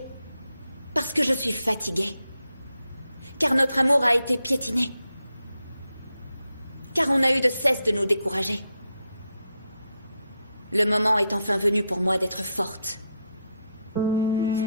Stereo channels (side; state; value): both; inverted; correlation -0.84